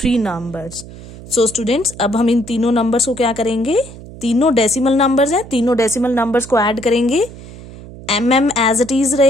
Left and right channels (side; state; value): right; noise; hum, 16 dB below the sound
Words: 3 numbers. so students, अब हम इन तीनों नंबर्स को क्या करेंगे? तीनों डेसिमल नंबर्स हैं, तीनों डेसिमल नंबर्स को ऐड करेंगे. mm एज इट इज